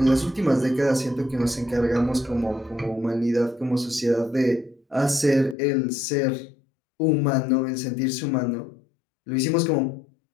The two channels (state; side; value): drops out; right; at 5.6 s